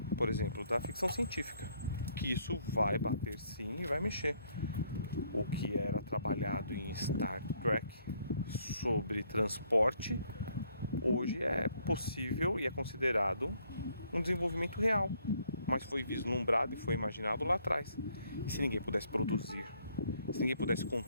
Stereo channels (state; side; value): inverted; both; correlation -0.67